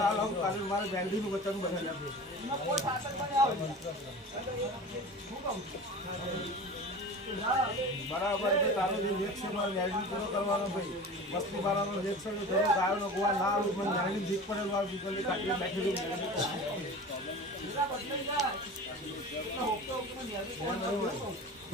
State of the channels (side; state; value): both; normal; correlation 0.35